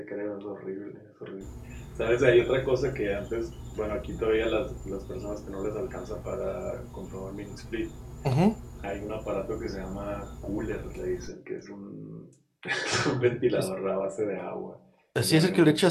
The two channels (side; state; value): both; identical; correlation 1.00